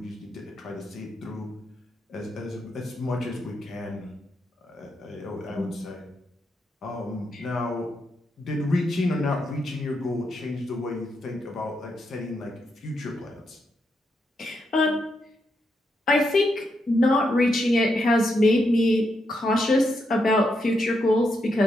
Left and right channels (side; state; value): both; normal; correlation 0.82